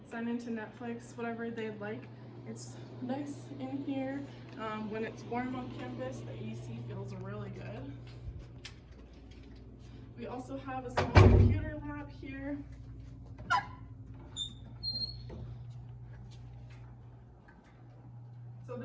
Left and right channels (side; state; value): both; identical; correlation 1.00